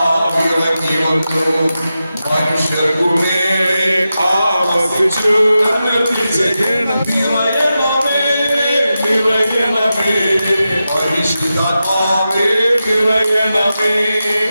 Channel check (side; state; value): both; inverted; correlation -0.91